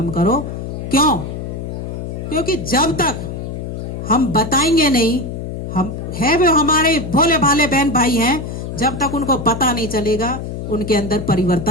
करो। क्यों? क्योंकि जब तक हम बताएंगे नहीं, हम है वो हमारे भोले भाले बहन भाई हैं, जब तक उनको पता नहीं चलेगा उनके अंदर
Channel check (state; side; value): noise; left; hum, 6 dB below the sound